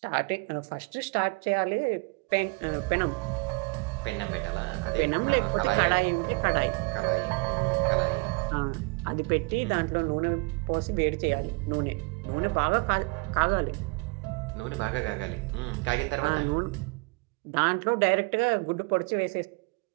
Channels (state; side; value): quieter; left; 29.1 dB